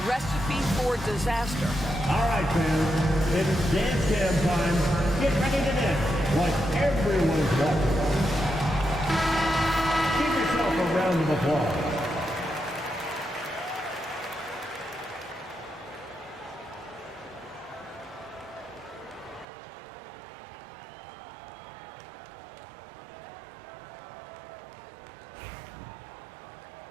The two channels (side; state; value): left; drops out; at 19.5 s